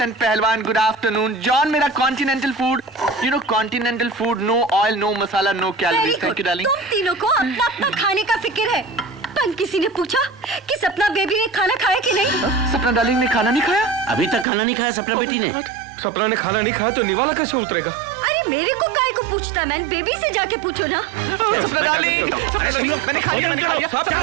and पहलवान, good afternoon. John, मेरा continental food, you know continental food, no oil, no masala, no calories. Thank you, darling. तुम तीनों को अपना अपना खाने का फिक्र है, एंड किसी ने पूछा कि सपना बेबी ने खाना खाया कि नहीं? सपना डार्लिंग ने खाना नहीं खाया? अभी तक खाना नहीं खाया सपना बेटी ने। सपना ने खाना नहीं खाया तो निवाला कैसे उतरेगा? अरे मेरे को काय को पूछता, मैन बेबी से जाके पूछो ना। सपना डार्लिंग, मैंने खा लिया,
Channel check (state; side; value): drops out; left; at 14.5 s